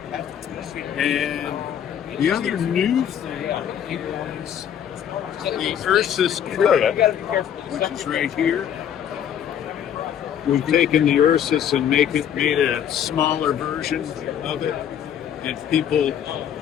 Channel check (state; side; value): quieter; right; 9.4 dB